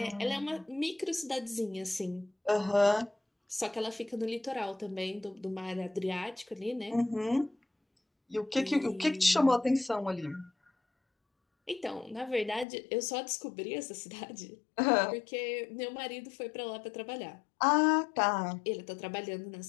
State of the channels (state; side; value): drops out; right; at 12.7 s